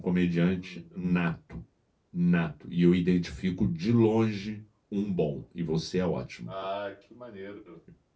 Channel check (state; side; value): identical; both; correlation 1.00